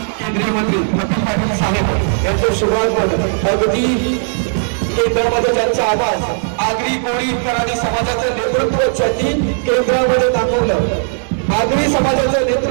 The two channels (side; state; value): left; silent; 69 dB below the other